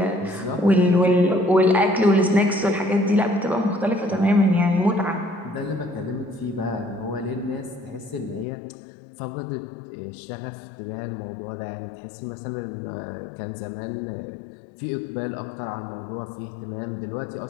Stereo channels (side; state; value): right; drops out; at 8.5 s